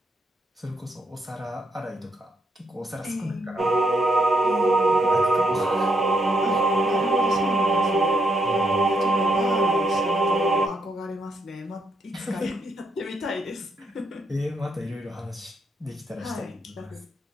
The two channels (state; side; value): normal; both; correlation 0.77